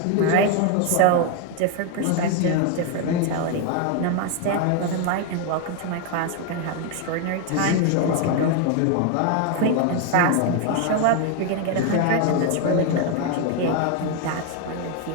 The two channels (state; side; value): different; both; correlation 0.01